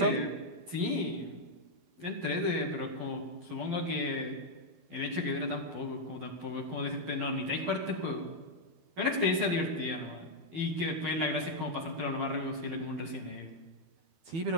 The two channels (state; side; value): late; left; 12 ms